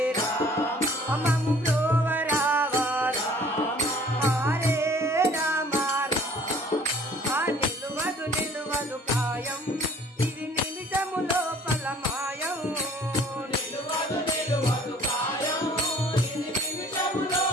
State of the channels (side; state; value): both; normal; correlation 0.53